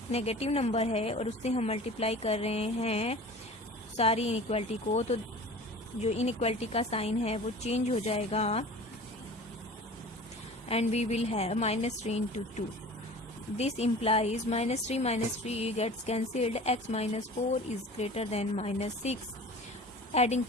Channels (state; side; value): normal; both; correlation 0.40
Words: नेगेटिव नंबर है और उससे हम मल्टीप्लाई कर रहे हैं सारी इनइक्वालिटी को, तो जो इनइक्वालिटी का साइन है वो चेंज हो जाएगा and we will have -3 into 2. This implies -3 minus 3 gets cancelled. X minus 4 is greater than -6. Adding